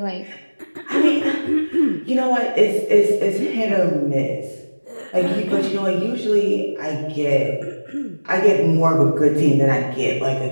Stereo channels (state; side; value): inverted; both; correlation -1.00